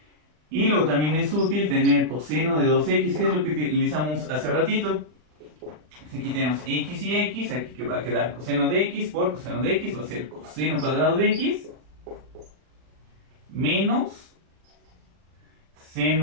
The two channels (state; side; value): late; left; 40 ms